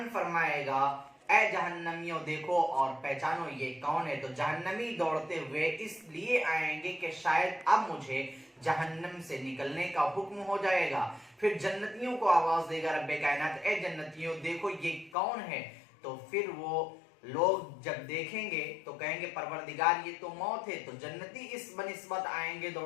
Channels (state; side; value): drops out; right; at 15.2 s